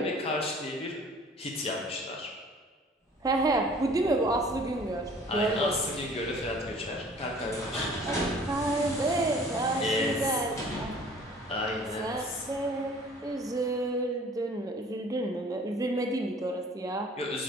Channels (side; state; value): both; normal; correlation 0.51